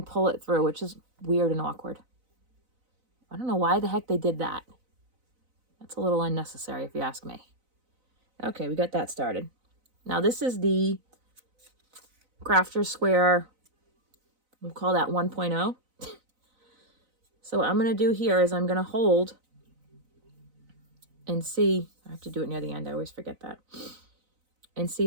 pull it through, which is weird and awkward. I don't know why the heck they did that. That's a little unnecessary if you ask me. Okay, we got that started. Now this is the Crafter Square, we'll call that 1.0. So what I'm going to do here is I'm going to hold and see, I have to do it near the end, I always forget that, and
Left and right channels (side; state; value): left; late; 4.0 ms